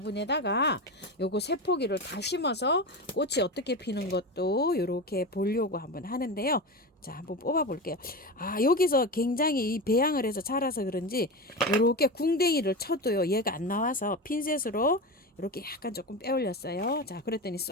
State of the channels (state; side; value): normal; both; correlation 0.22